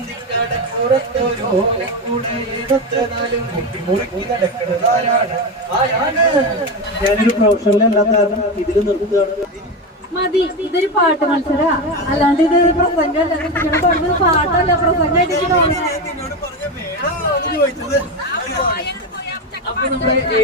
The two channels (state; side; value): normal; both; correlation 0.16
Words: ഓലക്കൂടെ എടുത്ത് നാലും കുത്തി മുറുക്കി നടക്കുന്നതാരാണ്? ആരാണ്? ഞാനൊരു പ്രൊഫഷണലല്ലാത്ത കാരണം ഇതിൽ നിർത്തുകയാണ്. മതി, ഇതൊരു പാട്ട് മത്സര, അല്ലാണ്ട് ഇതൊരു പ്രസംഗമല്ല. നിങ്ങളുടെ പറഞ്ഞത് പാട്ടല്ല, പ്രസംഗമായിട്ട് അപ്പൊ നമ്മുടെ